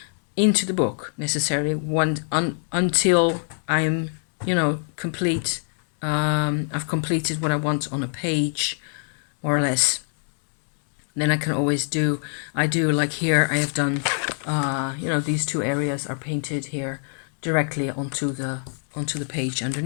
into the book necessarily until I'm, complete. I've completed what I want on a page, more or less. Then I can always I do like here I have done, these two areas are painted here directly onto the page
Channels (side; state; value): right; silent; 55 dB below the other